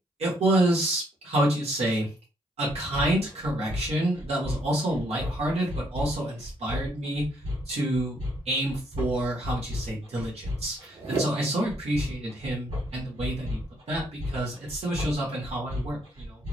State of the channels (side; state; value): both; normal; correlation 0.70